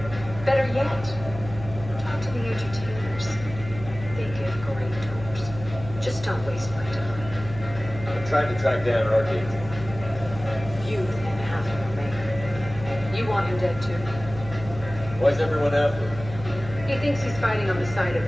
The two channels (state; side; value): noise; right; hum, 12 dB below the sound